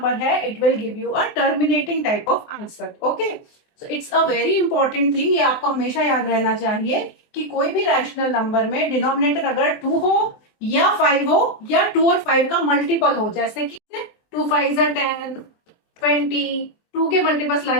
है, it will give you a terminating type of answer. Okay, so it's a very important thing, ये आपको हमेशा याद रहना चाहिए कि कोई भी रैशनल नंबर में डिनोमिनेटर अगर 2 हो या 5 हो या 2 और 5 का मल्टीपल हो, जैसे कि 2 5 10, 20, 2 के मल्टीपल्स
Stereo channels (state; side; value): late; right; 24 ms